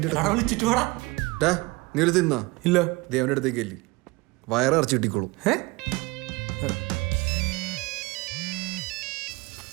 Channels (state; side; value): quieter; left; 23.5 dB